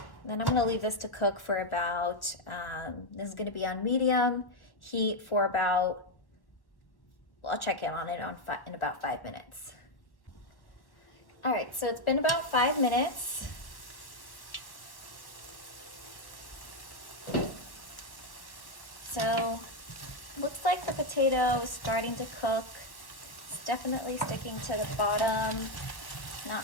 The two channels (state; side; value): late; right; 1.3 ms